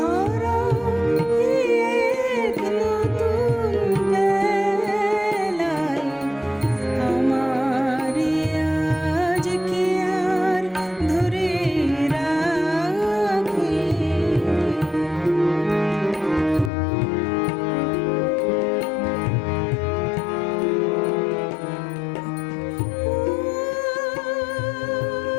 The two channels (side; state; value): right; drops out; at 16.7 s